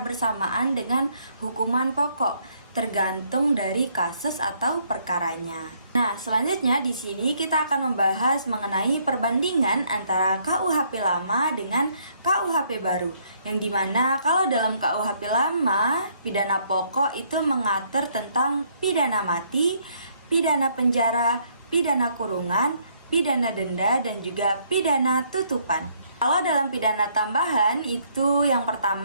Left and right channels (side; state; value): both; inverted; correlation -0.68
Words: dengan hukuman pokok, tergantung dari kasus atau perkaranya. Nah, selanjutnya di sini kita akan membahas mengenai perbandingan antara KUHP lama dengan KUHP baru. Yang dimana kalau dalam KUHP lama, pidana pokok itu mengatur tentang pidana mati, pidana penjara, pidana kurungan, pidana denda, dan juga pidana tutupan. Kalau dalam pidana tambahan itu yang